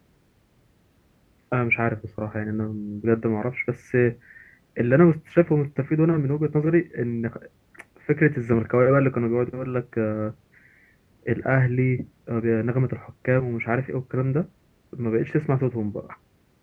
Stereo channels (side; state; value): both; identical; correlation 1.00